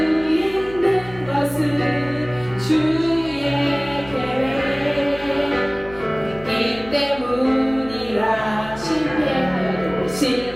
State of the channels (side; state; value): left; noise; hum, 18 dB below the sound